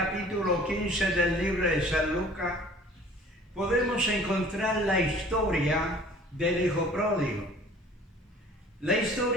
15 del libro de San Lucas, podemos encontrar la historia del hijo pródigo. La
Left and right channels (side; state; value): both; normal; correlation 0.50